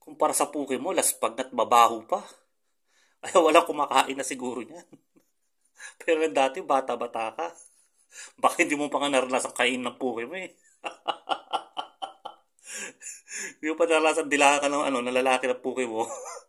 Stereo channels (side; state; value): both; identical; correlation 1.00